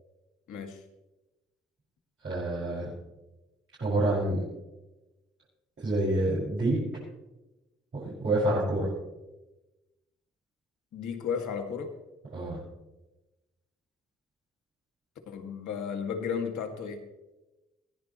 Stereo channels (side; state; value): both; normal; correlation 0.56